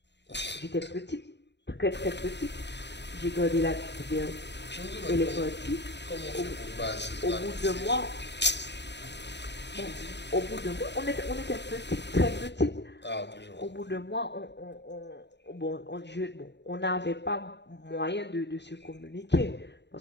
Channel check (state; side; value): late; right; 0.50 ms